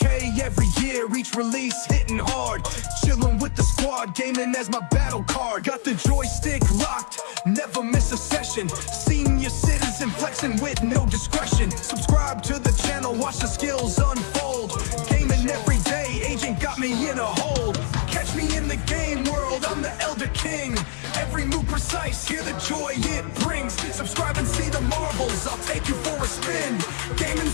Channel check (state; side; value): silent; right; digital silence